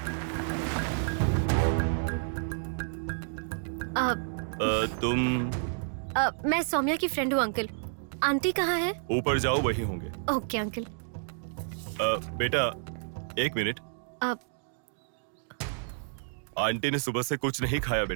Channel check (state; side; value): silent; left; digital silence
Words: तुम? मैं सौम्या की फ्रेंड हूँ अंकल। आंटी कहाँ है? ऊपर जाओ, वही होंगे। Okay uncle. बेटा 1 मिनट। आंटी ने सुबह से कुछ नहीं खाया